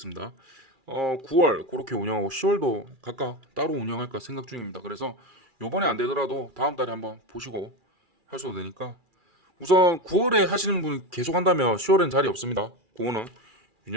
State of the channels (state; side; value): late; left; 2.4 ms